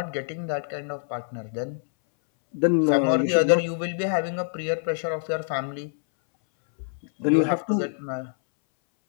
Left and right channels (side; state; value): right; silent; 61 dB below the other